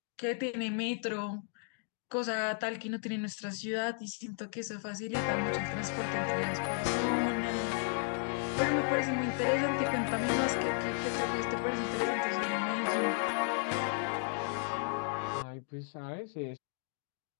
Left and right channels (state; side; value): silent; right; 55 dB below the other